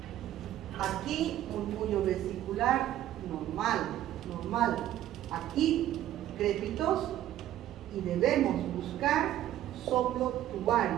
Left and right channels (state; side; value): quieter; left; 12.7 dB